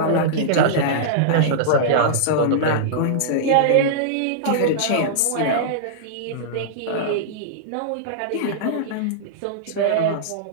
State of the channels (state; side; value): different; both; correlation -0.02